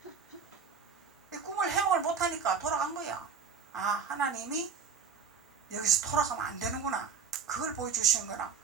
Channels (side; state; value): left; quieter; 6.3 dB